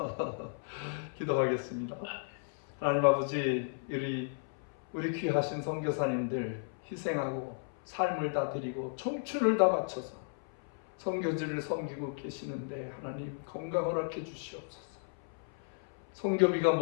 기도하겠습니다. 하나님 아버지, 우리 귀하신 선교사님들 희생하고 삶을 다 드리고 청춘을 다 바쳐서 선교지를 섬기고 계시는데 하나님 건강 허락해 주시옵소서. 선교비가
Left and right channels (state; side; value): silent; right; 55 dB below the other